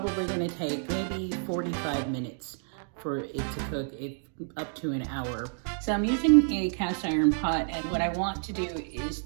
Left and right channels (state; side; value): silent; left; 58 dB below the other